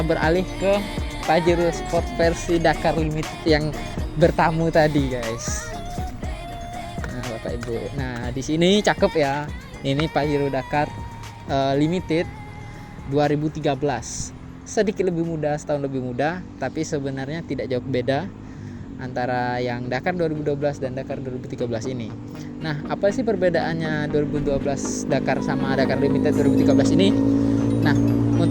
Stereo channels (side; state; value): both; identical; correlation 1.00